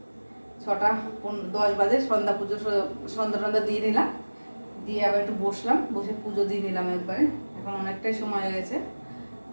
6:10 বাজে সন্ধ্যা পুজো, সন্ধ্যা দিয়ে নিলাম, দিয়ে আবার একটু বসলাম, বসে পুজো দিয়ে নিলাম একবারে। এখন অনেকটাই সময় হয়ে গেছে,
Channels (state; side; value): inverted; both; correlation -1.00